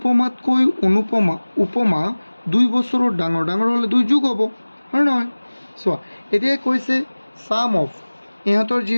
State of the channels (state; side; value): inverted; both; correlation -1.00